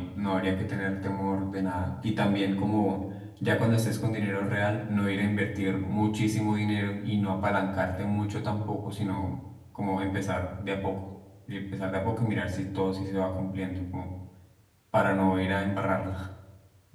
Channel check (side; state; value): both; identical; correlation 1.00